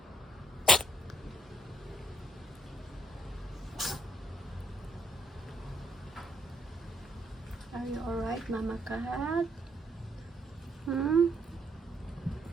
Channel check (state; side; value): normal; both; correlation 0.72